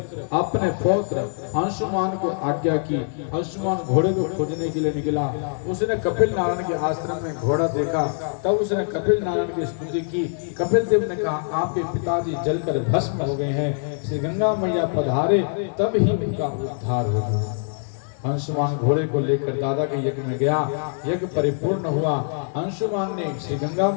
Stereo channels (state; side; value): silent; right; digital silence